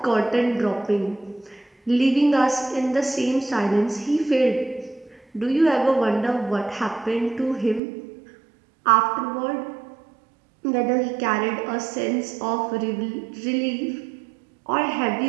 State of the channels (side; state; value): left; drops out; at 7.8 s